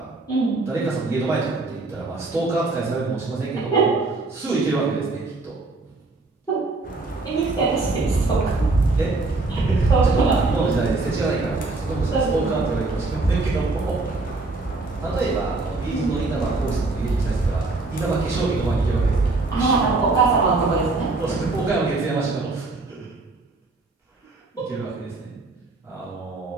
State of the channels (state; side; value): quieter; left; 3.4 dB